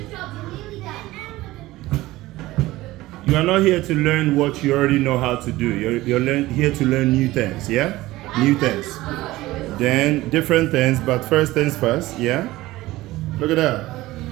your job. You're nearly done. You are not here to learn what you already know how to do. You're here to learn new things, yeah? New things. Then different things, but first things first, yeah? Look at that.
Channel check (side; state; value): left; quieter; 17.8 dB